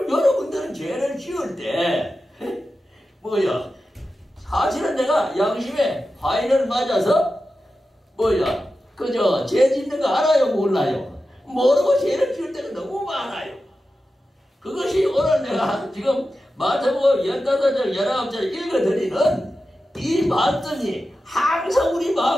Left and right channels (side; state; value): both; normal; correlation 0.92